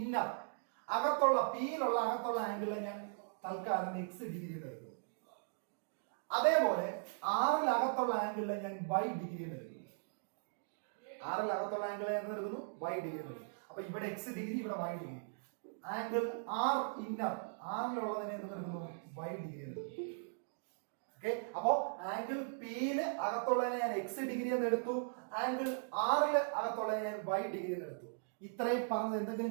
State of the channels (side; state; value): left; silent; digital silence